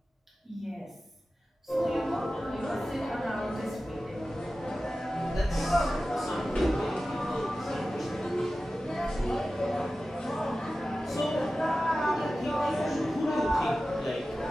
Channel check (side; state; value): both; normal; correlation 0.95